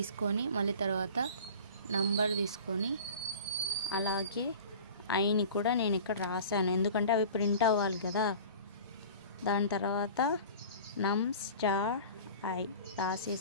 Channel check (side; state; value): both; inverted; correlation -0.40